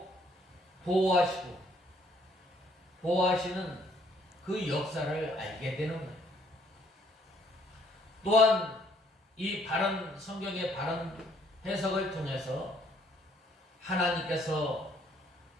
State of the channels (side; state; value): both; normal; correlation 0.64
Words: 보호하시는 그 역사를 알게 되는 거예요. 또한 이 바른 성경의 바른 해석을 통해서 하나님께서